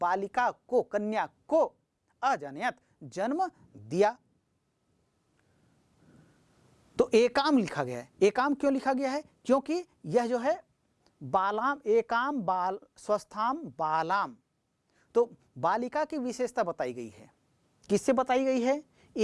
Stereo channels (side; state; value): both; identical; correlation 1.00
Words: को, कन्या को, अजनयत जन्म दिया। तो एकाम लिखा गया है। एकाम क्यों लिखा गया है? क्योंकि यह जो है बालाम, एकाम बाल स्वस्थाम बालाम, तो बालिका की विशेषता बताई गई है। किससे बताई गई है?